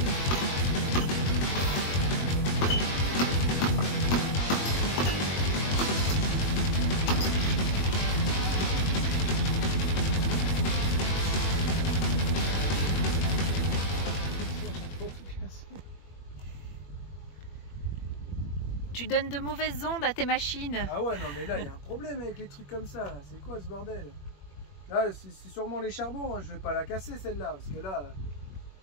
Tu donnes de mauvaises ondes à tes machines. Ah ouais, non mais là il y a un problème avec les trucs comme ça. C'est quoi ce bordel? Là c'est sûrement les charbons, hein. Je vais pas la casser celle-là. Parce que là,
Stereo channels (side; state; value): right; late; 21 ms